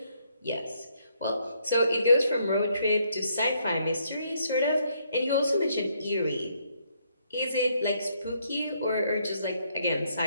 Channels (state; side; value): inverted; both; correlation -0.72